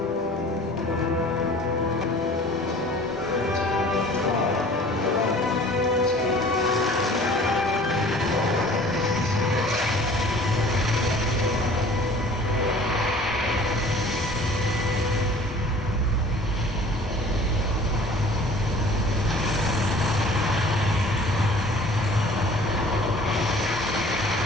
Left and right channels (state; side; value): normal; both; correlation 0.48